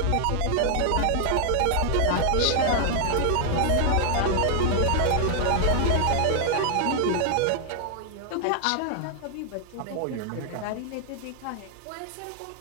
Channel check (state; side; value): different; both; correlation 0.00